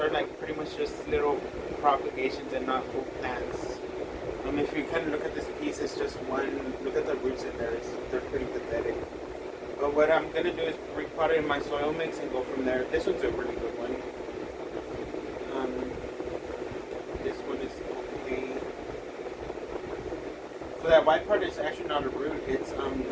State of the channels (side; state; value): both; identical; correlation 1.00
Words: like pretty much just little propagations and not full plants. If you kind of look at this piece, it's just one. Look at the roots in there; they're pretty pathetic. But what I'm gonna do is repot it in my soil mix and go from there. This one's a really good one. Um, this one is okay. So that white part is actually not a root; it's